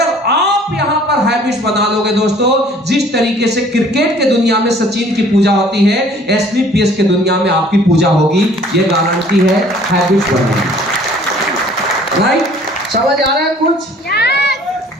आप यहां पर हैबिट्स बना लोगे दोस्तों, जिस तरीके से क्रिकेट के दुनिया में सचिन की पूजा होती है, एसलीपीएस के दुनिया में आपकी पूजा होगी। ये गारंटी है हैबिट्स बनाने। राइट? समझ आ रहा है कुछ?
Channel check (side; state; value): both; normal; correlation 0.54